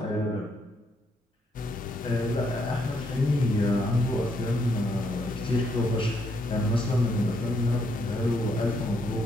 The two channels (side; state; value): both; normal; correlation 0.74